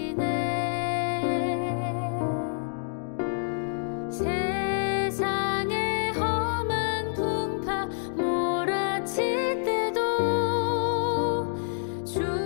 세상의 험한 풍파 몰아칠 때도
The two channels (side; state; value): right; silent; digital silence